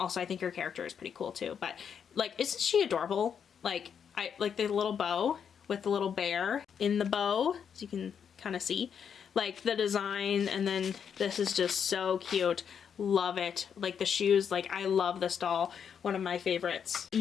I think her character is pretty cool too. But like, isn't she adorable? Like, I like the little bow with the little bear in the bow, as you can kind of see, like the design, and then this is just so cute. Love it. Like the shoes, like I love this doll, one of my favorites.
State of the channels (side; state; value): right; quieter; 7.5 dB